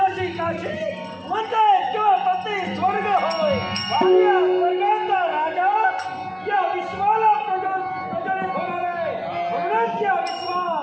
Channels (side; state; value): both; identical; correlation 1.00